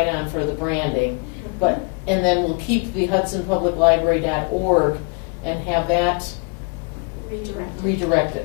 on for the branding. But, and then we'll keep the hudsonpubliclibrary.org and have that Redirected.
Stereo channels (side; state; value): right; quieter; 33.6 dB